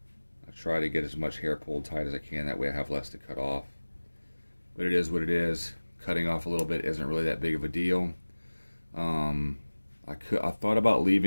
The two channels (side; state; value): both; inverted; correlation -1.00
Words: I try to get as much hair pulled tight as I can, that way I have less to cut off. But it is what it is. Cutting off a little bit isn't really that big of a deal. I thought about